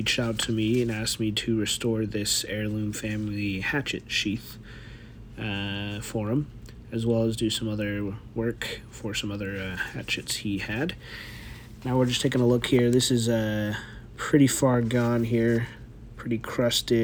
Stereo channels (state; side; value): identical; both; correlation 1.00